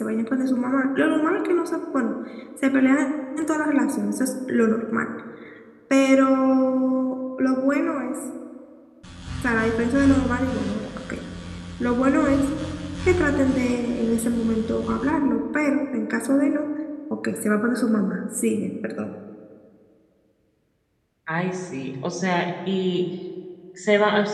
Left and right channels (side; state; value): both; identical; correlation 1.00